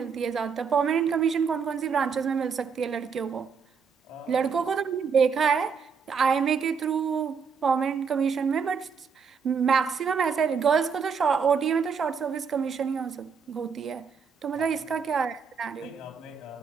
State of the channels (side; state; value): left; quieter; 6.0 dB